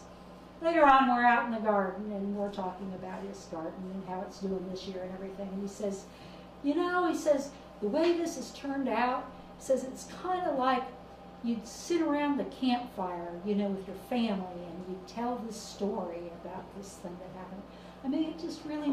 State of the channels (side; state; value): both; identical; correlation 1.00